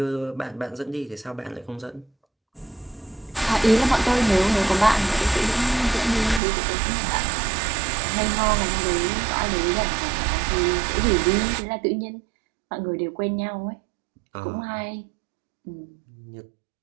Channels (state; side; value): drops out; left; at 6.4 s